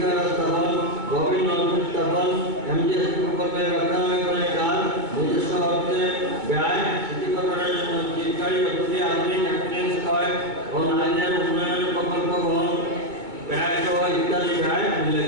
স্থাপন গভীর নলকূপ স্থাপন এমজিএস প্রকল্পের রক্ষণাবেক্ষণের কাজ নিজস্ব অর্থে ব্যয় সিটি কর্পোরেশনের জন্য চিরকারী অতিথি আধুনিক অ্যাম্বুলেন্স ক্রয় ও নারীদের উন্নয়নের প্রকল্প গ্রহণ ব্যয় সহ ইত্যাদি ব্যয়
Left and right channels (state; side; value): late; left; 2.2 ms